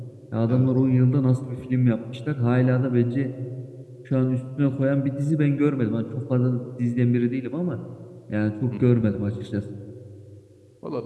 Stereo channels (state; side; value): identical; both; correlation 1.00